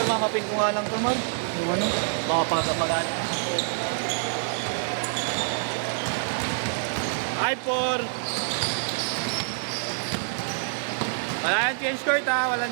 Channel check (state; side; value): silent; left; 61 dB below the other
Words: mamapin ko nga lang ito, Mal. Yung ano, baka pangkamagaan. 5-4. Walang change court ha, walang